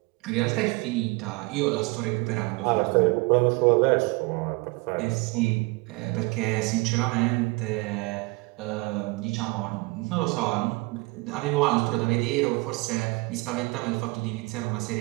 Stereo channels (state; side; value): quieter; left; 26.0 dB